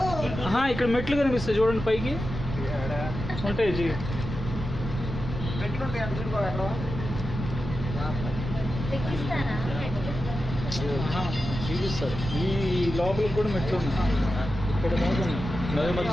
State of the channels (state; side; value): noise; right; rumble, 6 dB below the sound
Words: ఇక్కడ మెట్లు కనిపిస్తాయి చూడండి, పైకి ఉంటాయి. చూపిస్తారు. ఈ లోపలికి కూడా మెట్లు ఉన్నాయి. ఇక్కడ దాకా నది